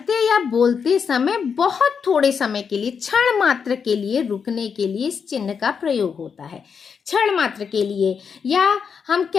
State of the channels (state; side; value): quieter; right; 6.4 dB